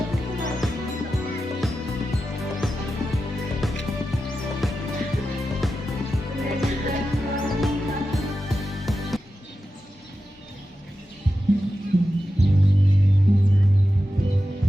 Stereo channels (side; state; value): both; normal; correlation 0.91